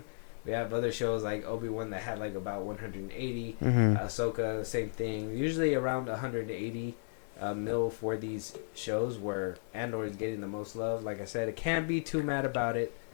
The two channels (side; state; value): right; silent; digital silence